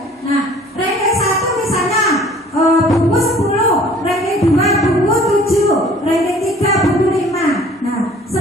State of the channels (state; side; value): normal; both; correlation 0.51